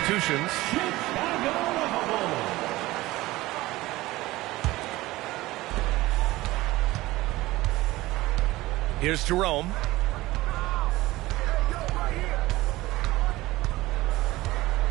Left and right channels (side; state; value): left; quieter; 18.5 dB